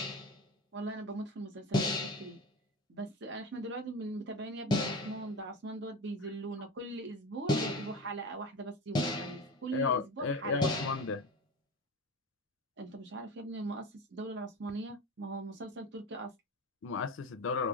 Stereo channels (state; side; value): normal; both; correlation 0.28